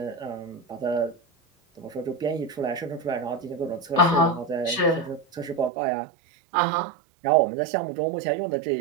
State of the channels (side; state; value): left; drops out; at 5.7 s